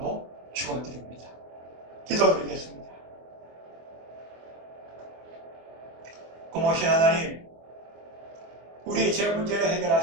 축원드립니다. 기도드리겠습니다. 고모신 하나님, 우리의 죄 문제를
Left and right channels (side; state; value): left; late; 24 ms